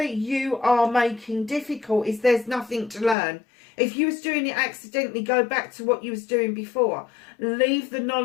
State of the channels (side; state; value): right; drops out; at 3.2 s